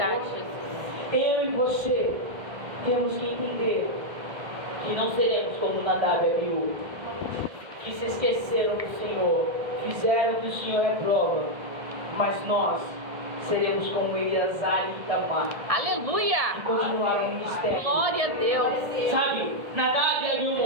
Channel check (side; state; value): left; late; 1.7 ms